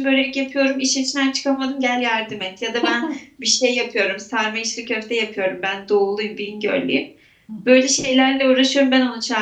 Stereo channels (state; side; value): identical; both; correlation 1.00